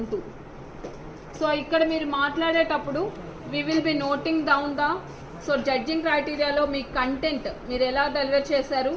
2. So ఇక్కడ మీరు మాట్లాడేటప్పుడు we will be noting down the judging criteria లో మీ content మీరు ఎలా deliver చేశారు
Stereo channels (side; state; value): both; identical; correlation 1.00